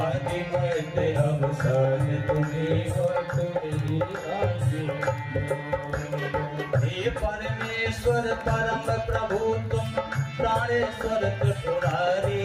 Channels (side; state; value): both; identical; correlation 1.00